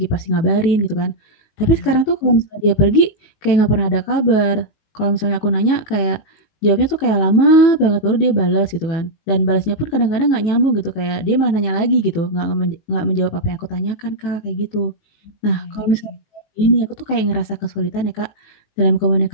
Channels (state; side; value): late; right; 19 ms